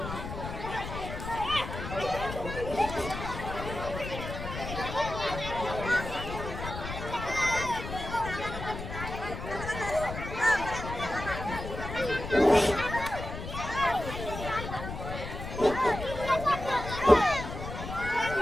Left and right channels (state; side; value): noise; left; rumble, 8 dB below the sound